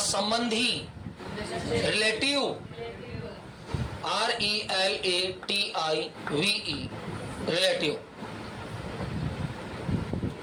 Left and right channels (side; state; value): both; identical; correlation 1.00